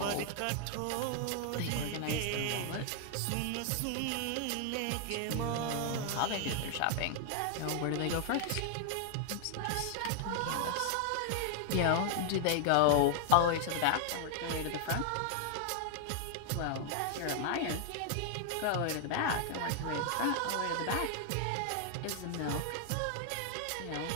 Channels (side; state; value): both; different; correlation 0.00